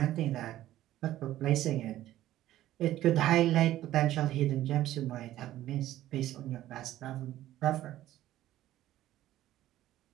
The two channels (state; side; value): quieter; left; 14.0 dB